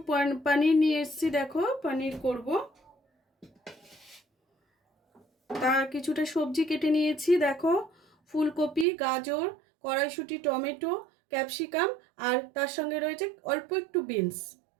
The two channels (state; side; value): drops out; left; at 8.8 s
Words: পনির নিয়ে এসেছি। দেখো পনির করব। তার কিছুটা সবজি কেটে নিয়েছি। দেখো ফুলকপি, গাজর, কড়াইশুঁটি, টমেটো, ক্যাপসিকাম আর তার সঙ্গে রয়েছে অল্প একটু বিনস।